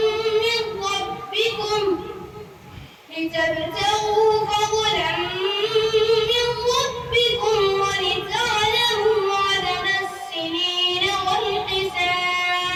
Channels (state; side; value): identical; both; correlation 1.00